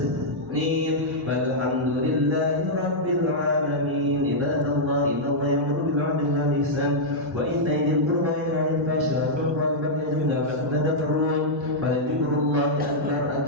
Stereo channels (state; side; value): normal; both; correlation -0.06